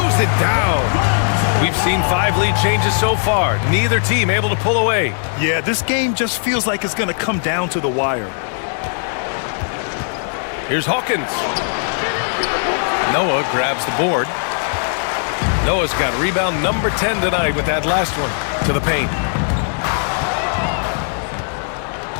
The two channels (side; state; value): right; silent; digital silence